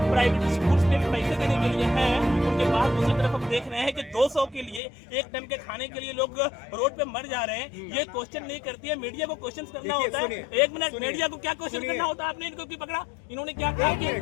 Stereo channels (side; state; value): right; drops out; at 4.8 s